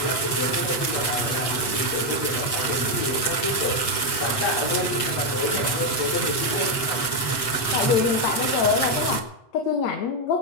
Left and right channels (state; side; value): late; right; 7.9 ms